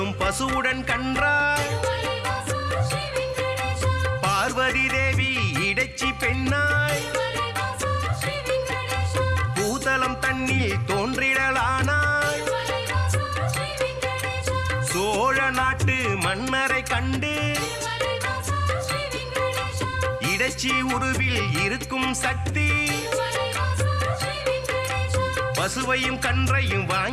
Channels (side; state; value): both; identical; correlation 1.00